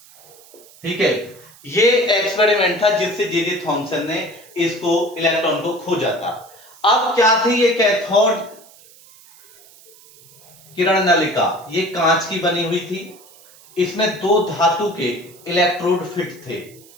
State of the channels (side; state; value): right; noise; hiss, 24 dB below the sound